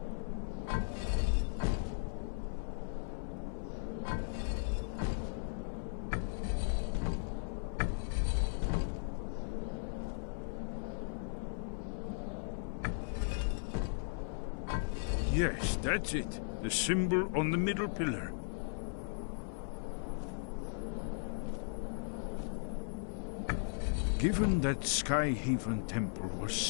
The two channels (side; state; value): right; silent; 53 dB below the other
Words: Yes, that's it. The symbol on the middle pillar. Given that Skyhaven Temple was